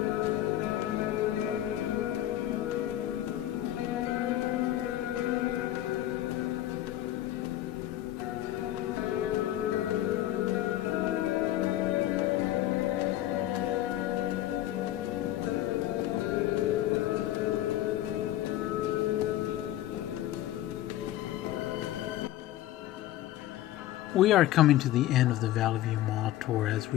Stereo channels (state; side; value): quieter; right; 13.7 dB